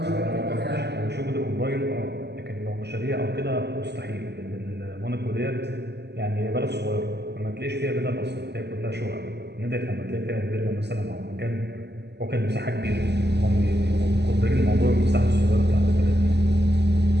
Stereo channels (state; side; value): late; left; 0.49 ms